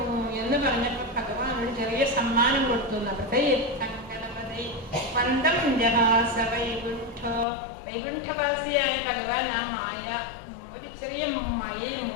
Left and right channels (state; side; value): drops out; right; at 7.5 s